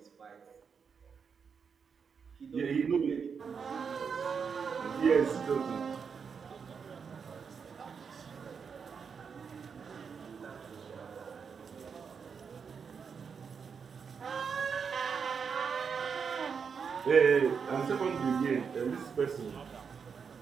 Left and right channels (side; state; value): left; quieter; 6.2 dB